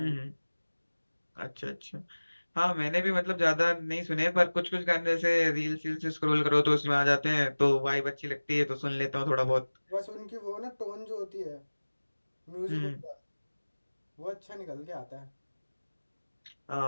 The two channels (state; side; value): inverted; both; correlation -1.00